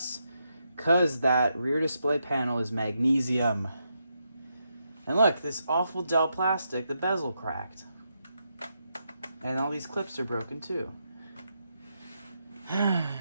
Because that rear display panel is magnesium. And look, this awful Dell plastic, the bezel cracked. And all these clips are broken too.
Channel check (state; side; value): inverted; both; correlation -0.82